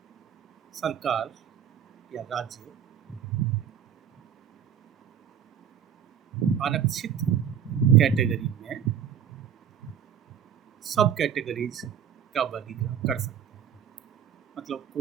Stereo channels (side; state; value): left; quieter; 8.7 dB